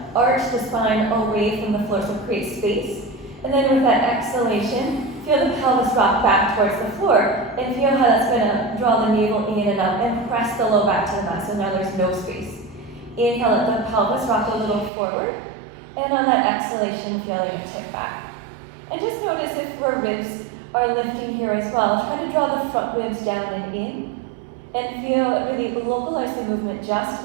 arch the spine away from the floor, so create space. And then with that exhalation, feel the pelvis rock back towards the floor, and feel how that's going to draw the navel in and up and press the low back to the mat, so now there's no space. Inhale, let the pelvis rock a little forward, and on that exhalation, feel it tip back. And just notice if our ribs are lifting here as well. Try to draw the front ribs down and in, and feel really localize the movement just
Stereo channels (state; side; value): drops out; left; at 14.9 s